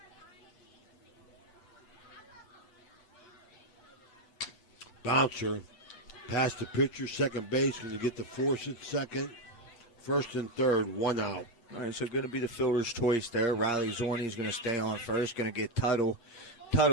Bouncer, past the pitcher, second base, going to get the force at second. First and third, 1 out. All right, so going to be the fielder's choice there. Riley Zorney is going to stay on first, going to get Tuttle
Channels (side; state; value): right; late; 8.5 ms